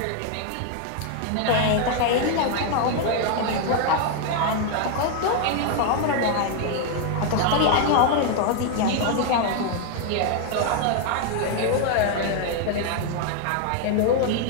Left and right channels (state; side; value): different; both; correlation 0.00